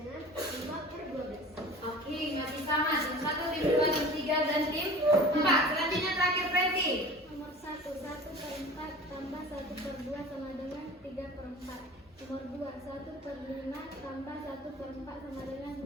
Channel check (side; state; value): both; normal; correlation 0.39